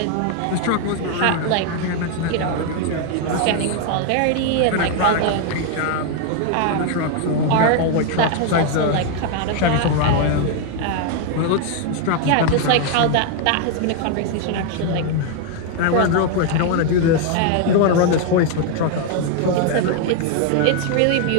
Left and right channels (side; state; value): both; different; correlation 0.00